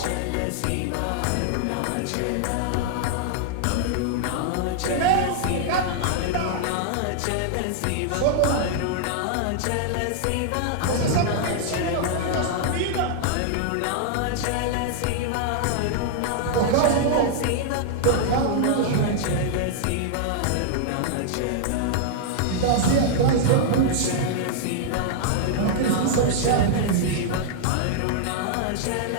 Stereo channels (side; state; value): both; different; correlation -0.01